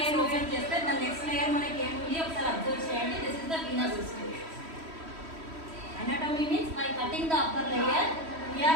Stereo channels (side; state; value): left; late; 3.1 ms